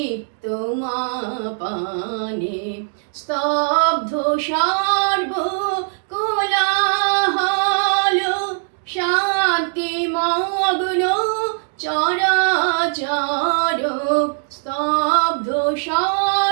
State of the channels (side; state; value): left; silent; 66 dB below the other